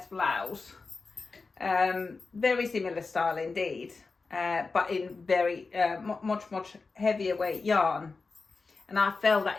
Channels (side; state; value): right; quieter; 4.2 dB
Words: blouse, very similar style indeed, but in very much heavier weight yarn, and I felt